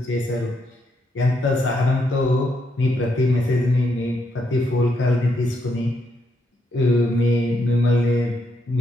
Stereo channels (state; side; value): normal; both; correlation 0.78